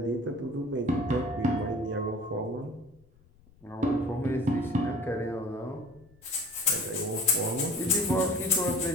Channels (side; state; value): left; noise; rumble, 28 dB below the sound